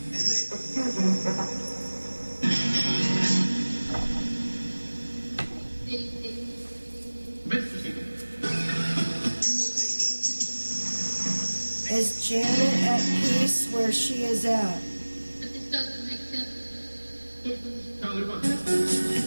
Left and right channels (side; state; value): both; inverted; correlation -1.00